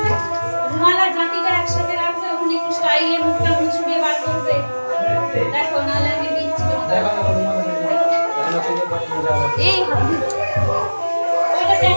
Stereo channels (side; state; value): both; inverted; correlation -1.00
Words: রুমাল আর জাতিটা একসাথে রাখবে, ওখানে একটু স্টাইলে মুখটা মুছবে বার করবে। দেখো নালে আমি দিচ্ছি তোমাকে। দেখা না রুমাল আছে তাহলে খুলে পানি মজা হবে এই হাত ওইটা